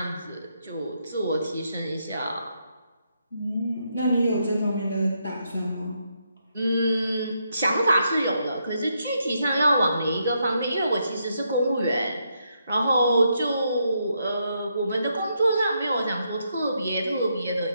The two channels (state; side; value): inverted; both; correlation -0.78